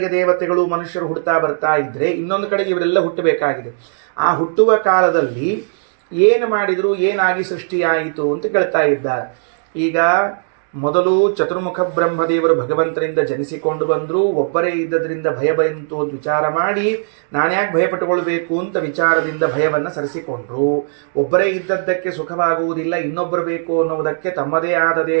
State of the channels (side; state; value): left; silent; digital silence